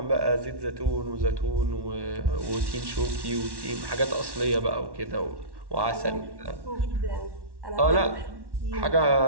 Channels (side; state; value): left; late; 1.1 ms